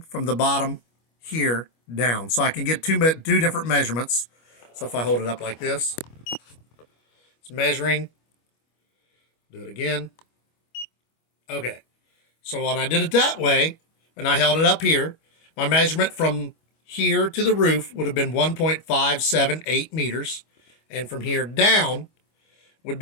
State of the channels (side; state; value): right; late; 25 ms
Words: from the bottom here down. So I can get two different measurements. So if I hold it up like this, it's measuring. Do it again. Okay. So when I did it that way, and I held it up here, my measurement from here to the roof would have been 1.578 meters, and from here down would